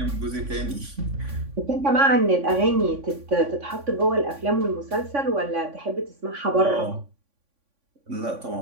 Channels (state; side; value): late; left; 3.5 ms